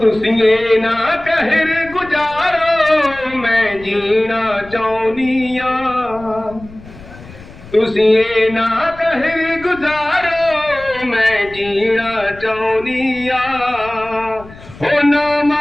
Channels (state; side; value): noise; left; rumble, 19 dB below the sound